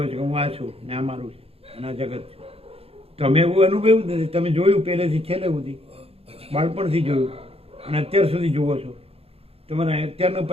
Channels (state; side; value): late; left; 0.28 ms